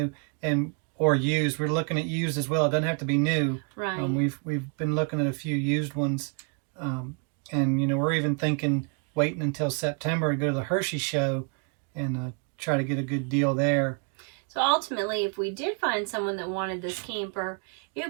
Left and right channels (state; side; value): quieter; left; 38.2 dB